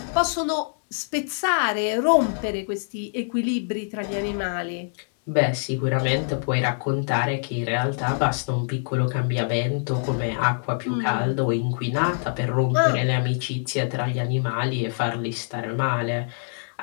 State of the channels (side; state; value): right; silent; digital silence